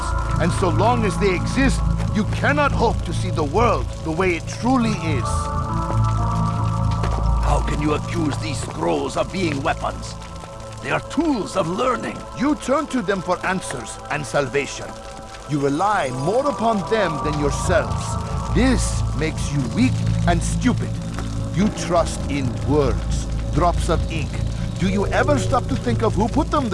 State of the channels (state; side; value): identical; both; correlation 1.00